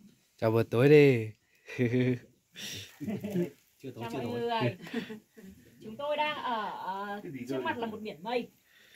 Chào buổi tối đi. Chưa tối chào chưa mọi tối. người. Chúng tôi đang ở trước mặt là một biển mây.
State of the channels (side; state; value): both; identical; correlation 1.00